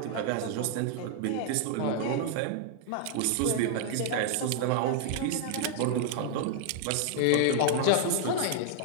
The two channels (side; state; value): both; different; correlation -0.01